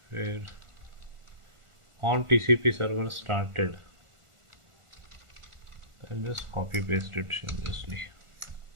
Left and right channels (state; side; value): late; left; 1.4 ms